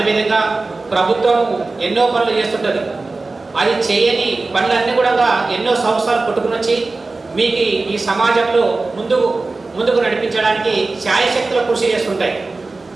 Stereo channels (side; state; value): left; quieter; 3.5 dB